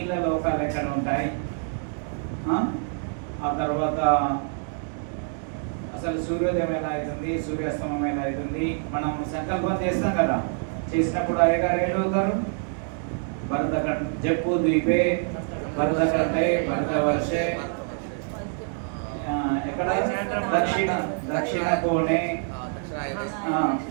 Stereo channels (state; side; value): silent; left; 55 dB below the other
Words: లోకాలు ఎక్కడ ఉంటాయి, ఆ తర్వాత అసలు సూర్యోదయం ఎలా అవుతుంది, సూర్యాస్తమం ఎలా అవుతుంది. మనం సంకల్పం చేస్తాం కదా, చేసినప్పుడు అయ్యగారు ఏడవుతారు, భరత జప్పు ద్వీపే భరతకంఠే భరతవర్షే, ఎక్కడ దక్షిణ కోణే,